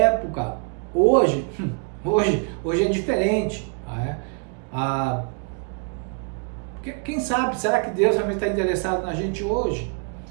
hoje é diferente. Quem sabe, será que Deus realmente está interessado na gente hoje?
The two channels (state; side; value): quieter; left; 39.6 dB